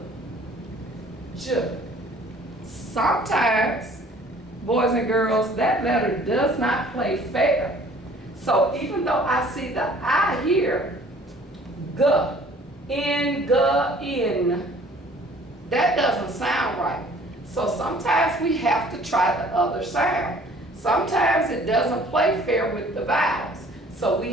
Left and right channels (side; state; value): both; normal; correlation 0.53